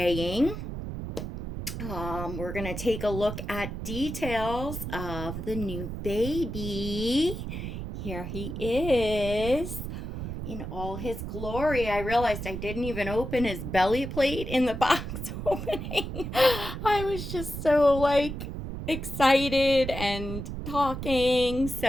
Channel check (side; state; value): right; noise; rumble, 6 dB below the sound